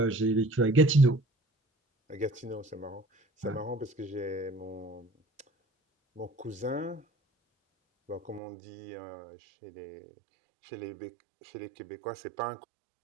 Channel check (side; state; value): left; drops out; at 8.4 s